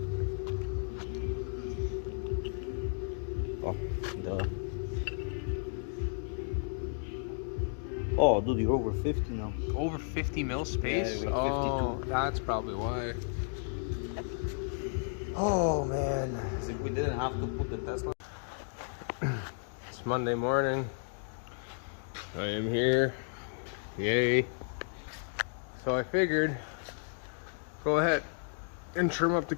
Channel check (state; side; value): silent; right; digital silence